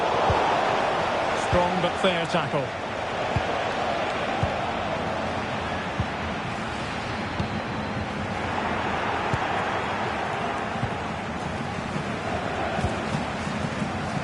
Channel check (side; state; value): both; identical; correlation 1.00